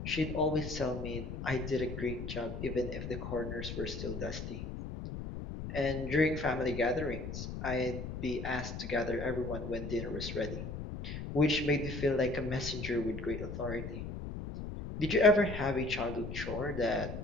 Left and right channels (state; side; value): noise; left; rumble, 7 dB below the sound